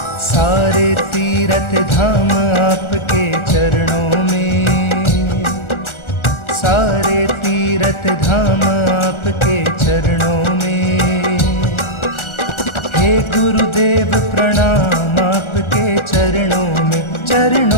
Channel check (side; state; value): right; late; 1.4 ms